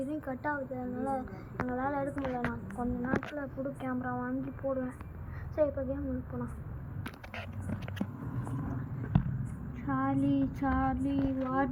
கட் ஆகுது, அதனால் எங்களால் எடுக்க முடியல. நான் கொஞ்ச நேரத்தில் புது கேமரா வாங்கி போடுவேன். சரி, இப்போ கேம் முடிச்சு போகலாம். Charlie Charlie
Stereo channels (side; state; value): both; identical; correlation 1.00